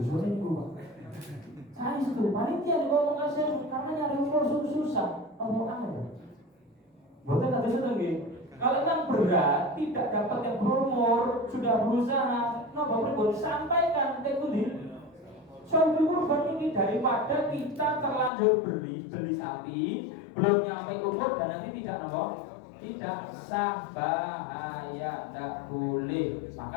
itu Pak. Saya itu panitia ngomong kasih karena nyari umur susah. Ngomong aneh. Betul nggak bisa lagi. Kalau yang berat tidak dapat yang berumur sudah berusaha, bapak sampaikan ke itu. Soal kurban ini daripada kita terlanjur beli sapi belum nyampe umur dan nanti tidak sah, bahaya, tidak boleh.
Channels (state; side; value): drops out; right; at 18.3 s